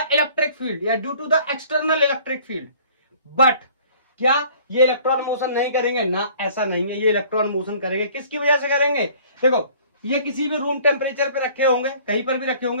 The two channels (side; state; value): both; inverted; correlation -0.52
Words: electric field या due to the external electric field. But क्या ये इलेक्ट्रॉन मोशन नहीं करेंगे? ना, ऐसा नहीं है। ये इलेक्ट्रॉन मोशन करेंगे। किसकी वजह से करेंगे? देखो, ये किसी भी रूम टेम्परेचर पे रखे होंगे, कहीं पर भी रखे